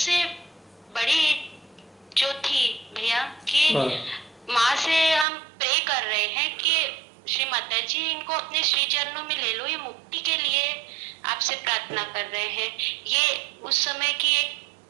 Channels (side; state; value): left; drops out; at 5.2 s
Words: बड़ी जो थी भैया कि माँ से हम प्रे कर रहे हैं कि श्री माता जी इनको अपने श्री चरणों में ले लो, ये मुक्ति के लिए आपसे प्रार्थना कर रहे हैं। ये उस समय की एक